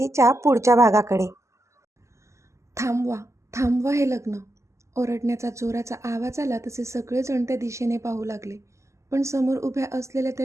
पुढच्या भागाकडे. थांबवा थांबवा हे लग्न. ओरडण्याचा जोराचा आवाज आला तसे सगळेजण त्या दिशेने पाहू लागले. पण समोर उभ्या असलेल्या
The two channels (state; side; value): late; left; 0.14 ms